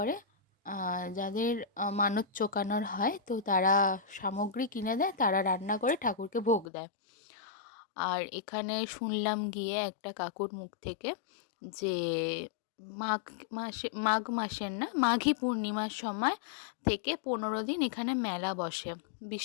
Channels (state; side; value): drops out; right; at 6.7 s